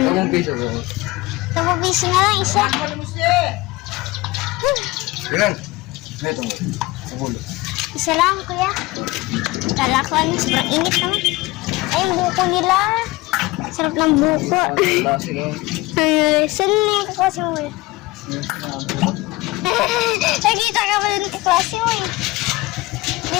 10 piso. 10 piso na lang, isa. Ilan? Ito mo. Sabul. Isa lang, kuya. Kala ko, ano, sobrang init naman. Ay, yung buko nila. Sarap ng buko. Klase lang. Ay, saan na yung kaklase mo, kuya? Nakita ka ba ng kaklase mo, eh? Hindi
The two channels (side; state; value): right; quieter; 20.6 dB